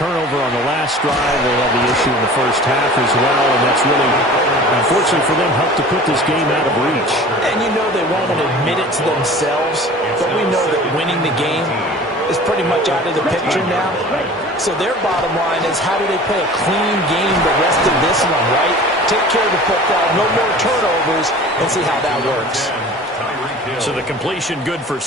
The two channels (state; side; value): normal; both; correlation 0.42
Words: on the last drive, they had the issue in the first half as well, and that's really, unfortunately for them, helped to put this game out of reach. And you know they won't admit it to themselves, but we know that winning the game is pretty much out of the picture now. So their bottom line is, how do they play a clean game the rest of this one, right? Take care of the football, no more turnovers, and see how that works. So the completion good for